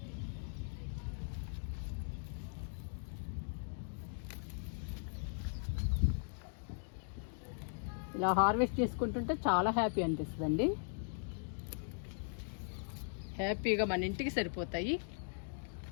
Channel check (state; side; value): silent; right; digital silence